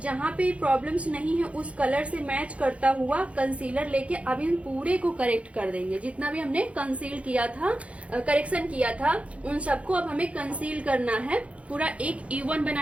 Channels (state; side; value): late; left; 0.063 ms